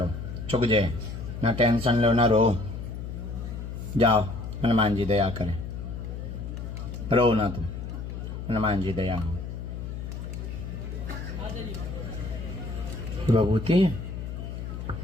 चुक जाए ना, टेंशन लो ना रो, जाओ हनुमान जी दया करें, रो ना तुम, हनुमान जी दया हो। विभूति है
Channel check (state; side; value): noise; left; hum, 7 dB below the sound